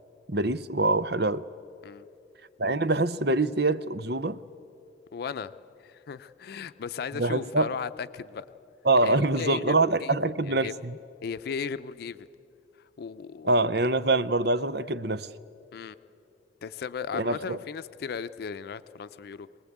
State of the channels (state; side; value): normal; both; correlation -0.20